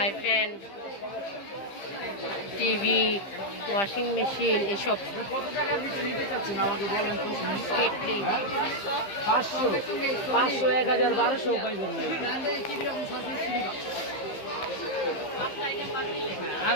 pan, TV, washing machine, এসব। কেটলি 500, 1000, 1200 পাইবেন। আর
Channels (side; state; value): right; late; 15 ms